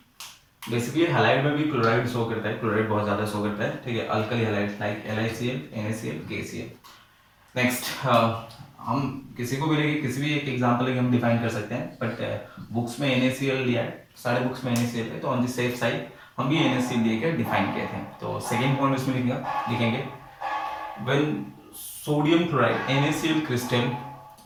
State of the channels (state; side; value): identical; both; correlation 1.00